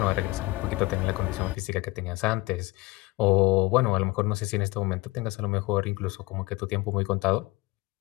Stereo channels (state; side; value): quieter; right; 22.2 dB